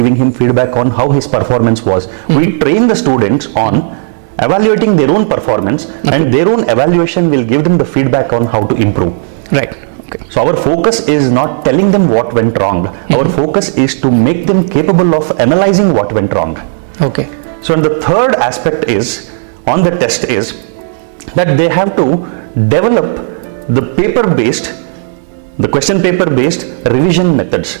him feedback on how his performance was. We train the students on evaluating their own performance, and their own evaluation will give them the feedback on how to improve. Right. Okay. So our focus is not telling them what went wrong. Our focus is to make them capable of analyzing what went wrong. Okay. So and the third aspect is on the test is that they have to develop the question paper based revision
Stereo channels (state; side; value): silent; left; digital silence